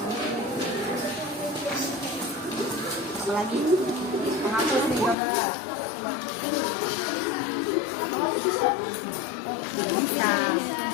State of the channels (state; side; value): drops out; right; at 5.2 s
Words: Apalagi menghapus nih coba. Tidak bisa.